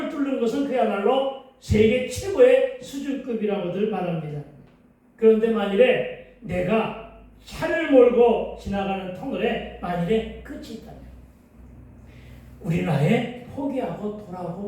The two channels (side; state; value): both; identical; correlation 1.00